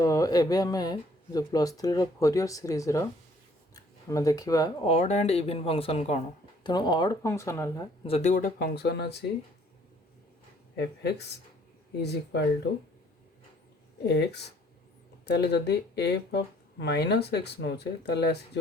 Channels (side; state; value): both; normal; correlation 0.60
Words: एबे आमे जो प्लस 3 रो फोरियर सीरीज रो हमें देखिबा ऑड एंड इवन फंक्शन कौन। तेणु ऑड फंक्शन है जदि गोटे फंक्शन अच्छी F X is equal to X, ताले जदि एफ ऑफ माइनस एक्स नौचे ताले